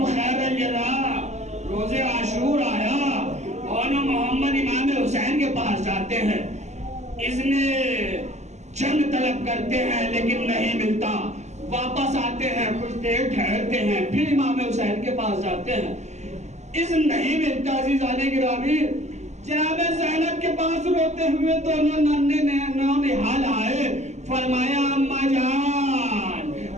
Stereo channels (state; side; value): late; left; 0.33 ms